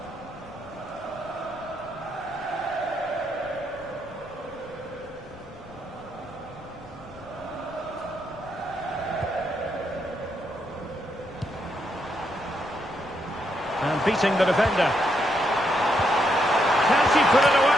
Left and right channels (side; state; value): left; noise; rumble, 25 dB below the sound